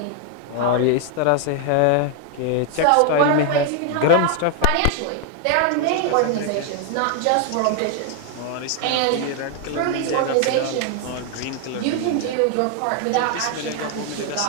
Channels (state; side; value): different; both; correlation 0.00